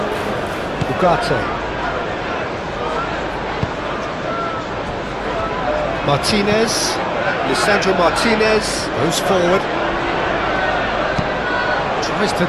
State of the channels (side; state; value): both; identical; correlation 1.00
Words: Ugarte. Martinez. Lisandro Martinez goes forward. Tries to